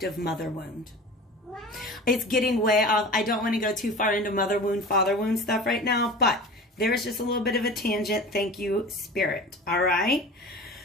mother wound. It's getting way off. I don't want to go too far into mother wound, father wound stuff right now, but there's just a little bit of a tangent. Thank you, Spirit. All right.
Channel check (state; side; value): normal; both; correlation 0.36